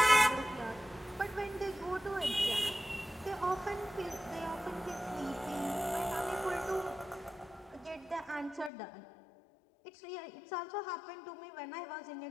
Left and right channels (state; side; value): drops out; right; at 8.7 s